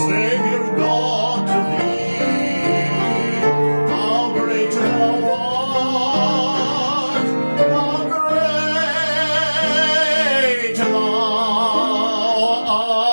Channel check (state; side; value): inverted; both; correlation -1.00